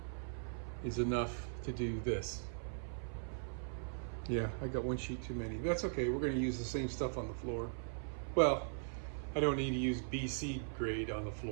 is enough to do this. Yeah, I got 1 sheet too many. That's okay, we're gonna use the same stuff on the floor. Well, I don't need to use BC grade on the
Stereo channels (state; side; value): silent; left; 51 dB below the other